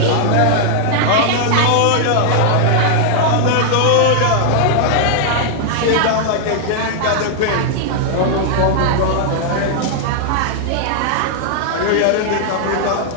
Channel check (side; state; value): both; different; correlation -0.01